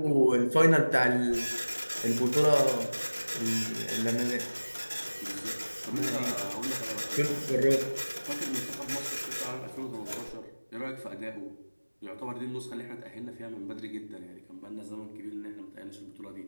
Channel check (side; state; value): both; inverted; correlation -1.00